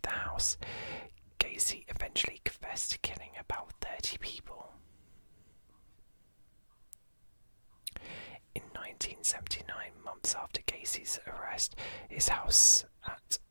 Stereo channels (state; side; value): inverted; both; correlation -1.00